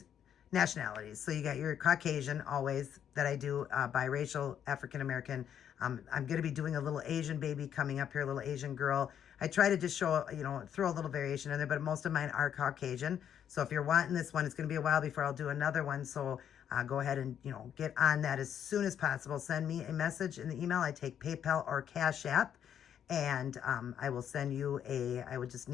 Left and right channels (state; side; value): quieter; right; 9.2 dB